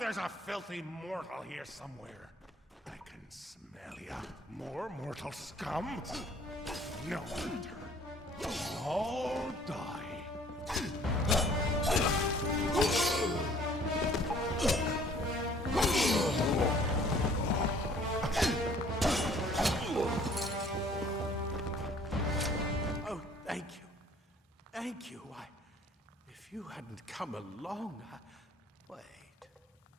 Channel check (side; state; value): both; normal; correlation 0.55